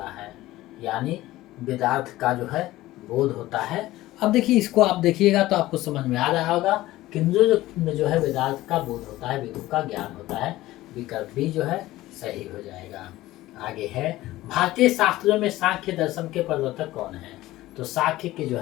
है? यानी वेदार्थ का जो है बोध होता है। अब देखिए इसको आप देखिएगा तो आपको समझ में आ रहा होगा किंजो में जो है वेदार्थ का बोध होता है, वेदों का ज्ञान होता है। विकल्प बी जो है सही हो जाएगा। आगे है भारतीय शास्त्रों में सांख्य दर्शन के प्रवर्तक कौन है? तो सांख्य के जो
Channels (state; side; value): quieter; right; 16.7 dB